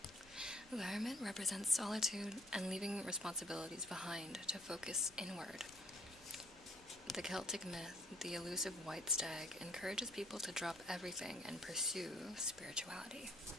The Hermit represents solitude and leaving responsibilities behind to focus inward. The Celtic myth, the elusive White Stag, encourages people to drop everything and pursue spirituality.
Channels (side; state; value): both; normal; correlation 0.61